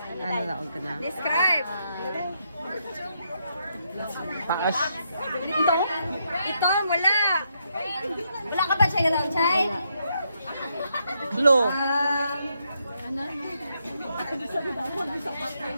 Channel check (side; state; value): both; inverted; correlation -0.78